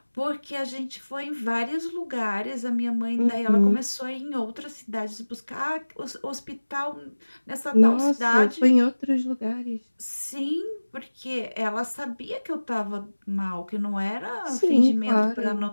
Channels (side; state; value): both; inverted; correlation -1.00